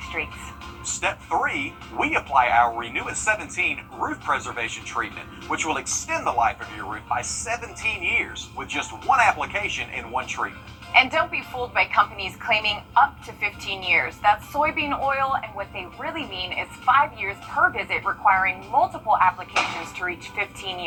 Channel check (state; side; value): identical; both; correlation 1.00